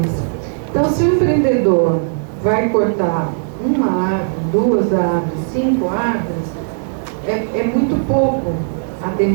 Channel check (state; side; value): silent; left; 68 dB below the other